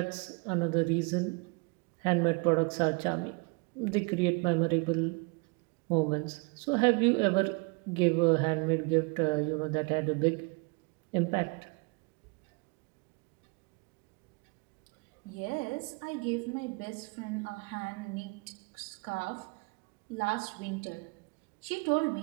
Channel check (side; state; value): left; quieter; 30.9 dB